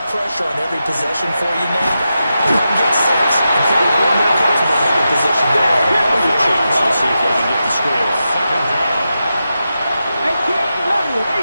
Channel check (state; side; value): inverted; both; correlation -0.89